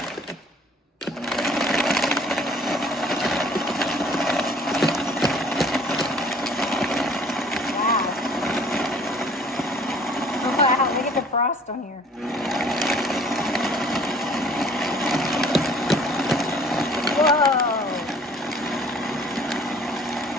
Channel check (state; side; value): normal; both; correlation 0.54